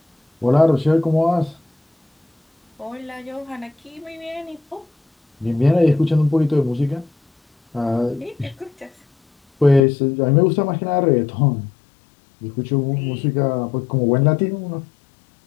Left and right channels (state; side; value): drops out; right; at 9.8 s